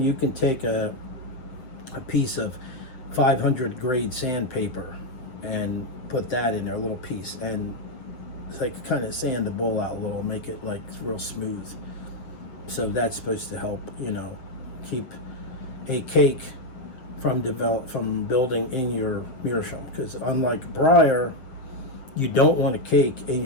you can take a piece of 500 grade sandpaper and put that in there, a little piece, and it's like kind of sand the bowl out a little, make it like real smooth. So that's supposed to help, keep a cake from building in your Meerschaum. Because unlike briar, you don't want a cake in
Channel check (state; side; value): late; right; 7.7 ms